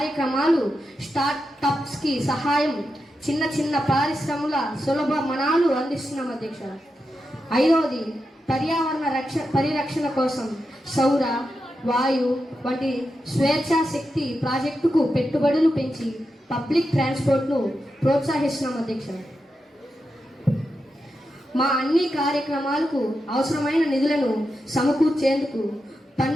స్టార్టప్స్కి సహాయం, చిన్న చిన్న పరిశ్రమల సులభ మనాలు అందిస్తున్నాం అధ్యక్ష. ఐదవది, పర్యావరణ పరిరక్షణ కోసం సౌర, వాయు వంటి స్వేచ్ఛా శక్తి ప్రాజెక్టుకు పెట్టుబడులు పెంచి పబ్లిక్ ట్రాన్స్పోర్ట్ను ప్రోత్సహిస్తున్నాం అధ్యక్ష. మా అన్ని కార్యక్రమాలకు అవసరమైన నిధులను సమకూర్చేందుకు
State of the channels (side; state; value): both; normal; correlation 0.88